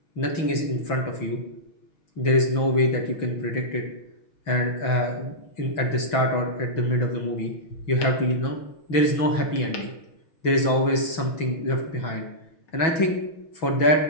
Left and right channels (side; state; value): right; late; 6.1 ms